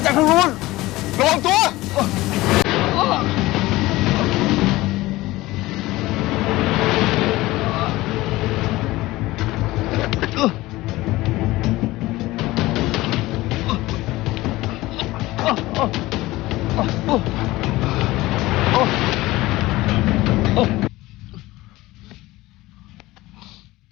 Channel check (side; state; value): right; quieter; 18.7 dB